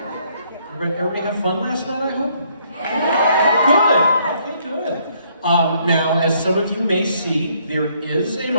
Everybody have fun last night, I hope? Good. Okay, good. Now, as some of you may see, there is a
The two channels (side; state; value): both; inverted; correlation -0.68